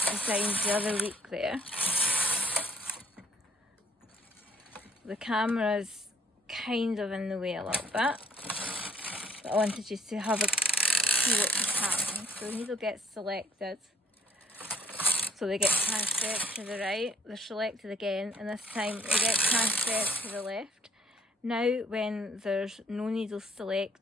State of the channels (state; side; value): normal; both; correlation 0.59